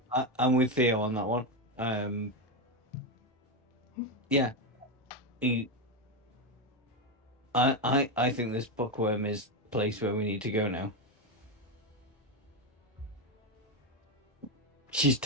with Theo on that one. Yeah. I think this bookworm is the place where we need to go now. She's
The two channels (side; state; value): both; normal; correlation 0.10